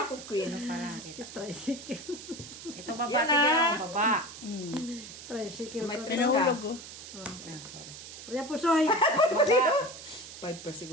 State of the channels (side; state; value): right; noise; hiss, 13 dB below the sound